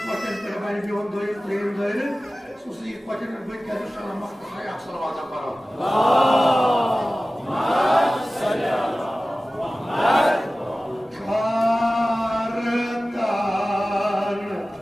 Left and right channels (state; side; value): normal; both; correlation 0.96